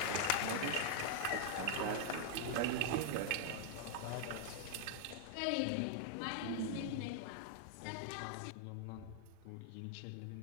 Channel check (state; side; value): different; both; correlation 0.00